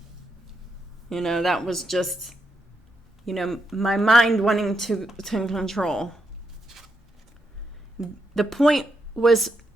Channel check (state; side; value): normal; both; correlation 0.81